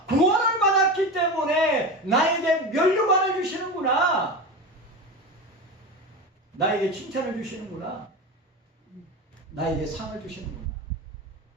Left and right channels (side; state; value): both; normal; correlation 0.24